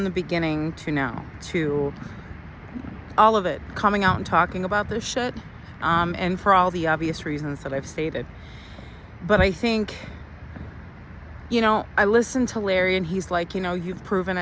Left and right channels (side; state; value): both; identical; correlation 1.00